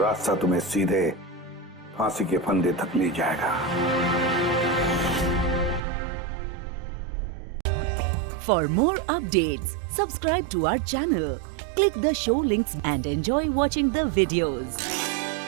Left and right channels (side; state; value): left; drops out; at 5.8 s